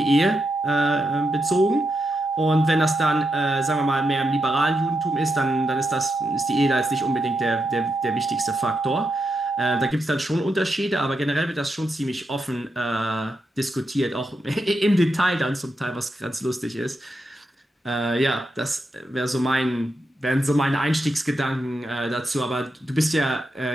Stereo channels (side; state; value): both; normal; correlation 0.85